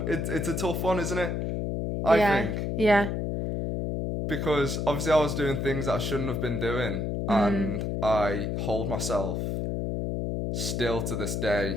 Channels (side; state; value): left; noise; hum, 1 dB below the sound